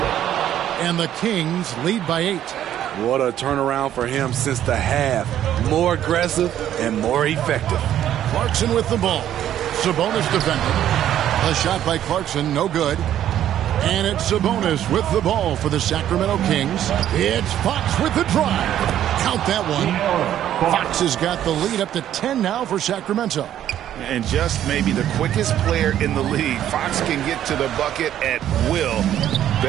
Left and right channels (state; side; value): quieter; left; 11.3 dB